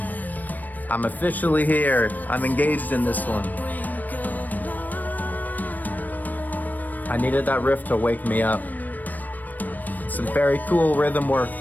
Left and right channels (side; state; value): right; late; 0.084 ms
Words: I'm officially here. I'm engaged in this one. I needed that riff to wake me up. Some very cool rhythm work